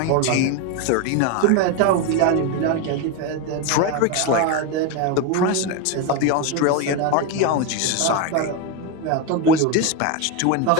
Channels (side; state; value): both; different; correlation 0.02